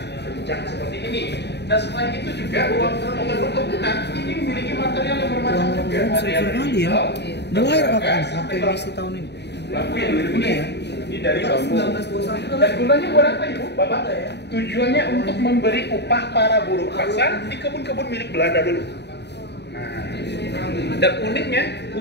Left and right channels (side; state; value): right; late; 0.50 ms